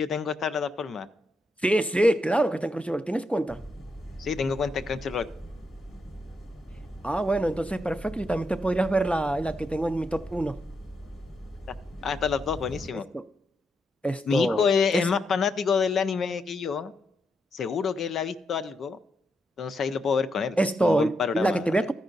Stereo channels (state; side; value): normal; both; correlation 0.82